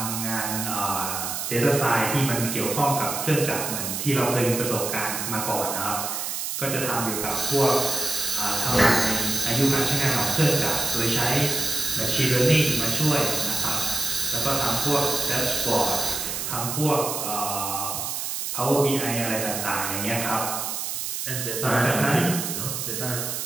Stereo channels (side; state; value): right; noise; hiss, 3 dB below the sound